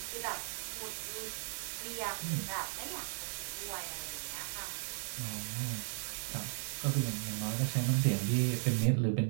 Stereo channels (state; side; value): silent; left; digital silence